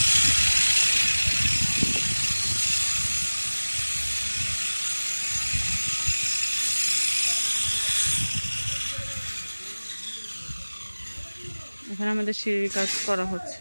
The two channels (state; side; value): inverted; both; correlation -1.00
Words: এখানে আমাদের সিঁড়ির কাজ করা